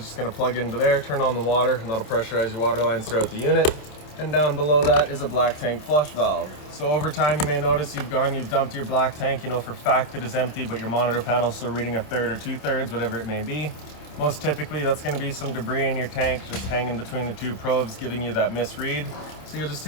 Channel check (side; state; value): right; late; 27 ms